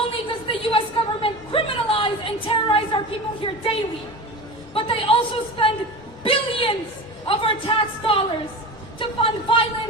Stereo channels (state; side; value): normal; both; correlation 0.30